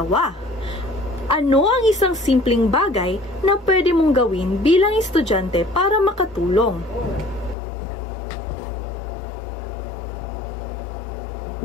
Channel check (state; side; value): drops out; right; at 7.6 s